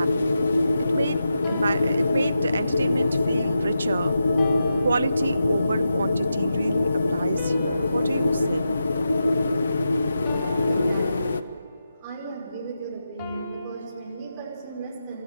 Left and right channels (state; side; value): inverted; both; correlation -0.88